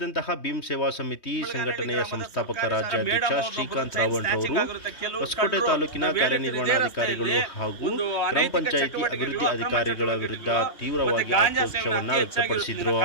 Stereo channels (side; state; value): right; late; 3.2 ms